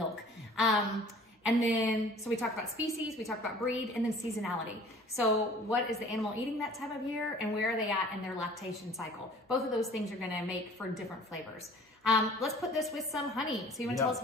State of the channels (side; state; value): both; normal; correlation 0.49